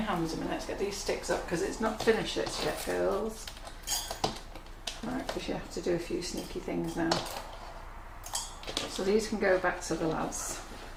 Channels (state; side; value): identical; both; correlation 1.00